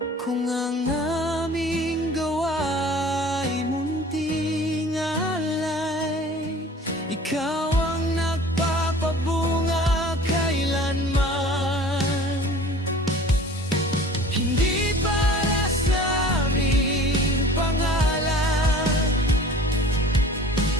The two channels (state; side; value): normal; both; correlation 0.45